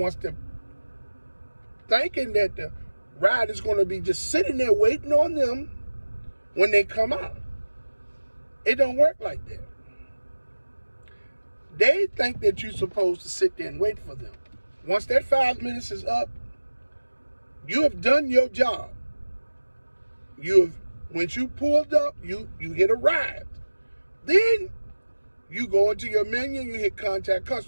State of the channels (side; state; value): both; inverted; correlation -1.00